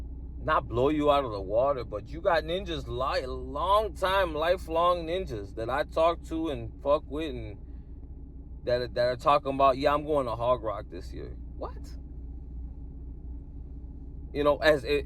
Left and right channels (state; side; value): identical; both; correlation 1.00